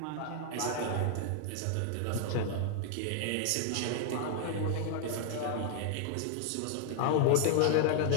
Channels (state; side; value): different; both; correlation 0.00